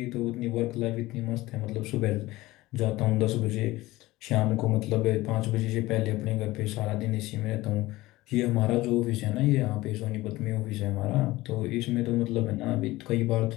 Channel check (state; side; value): quieter; right; 18.6 dB